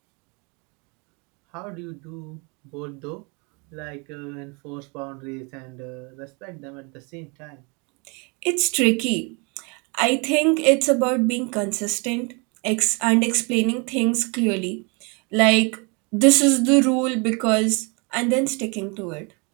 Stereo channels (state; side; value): quieter; left; 31.6 dB